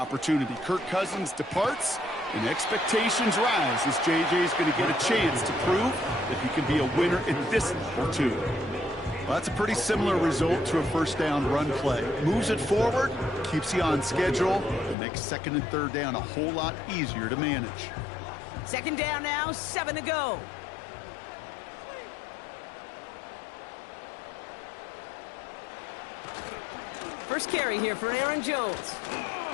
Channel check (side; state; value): right; drops out; at 15.0 s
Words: Kirk Cousins departs, and expectations rise as J.J. is going to get a chance to prove that he can be a winner at this level too. Well, that's a pretty similar result to a first down run play. Moves it forward, keeps you on schedule, and makes second and third down a whole lot easier to manage. Second down now, 7 to go. First carry here for Aaron Jones.